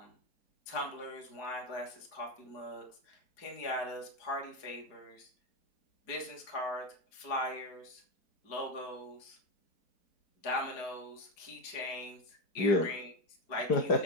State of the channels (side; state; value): right; late; 4.7 ms